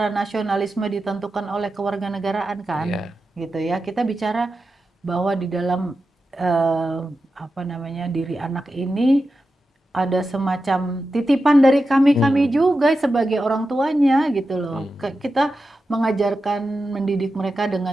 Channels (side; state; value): both; normal; correlation 0.91